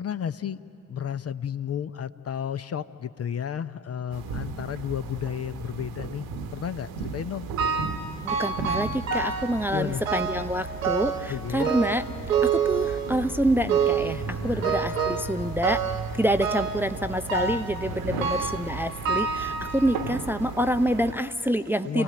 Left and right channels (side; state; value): both; normal; correlation 0.55